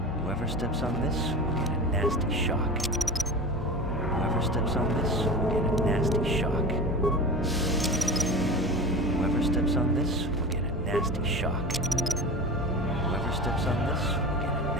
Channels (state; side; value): normal; both; correlation 0.30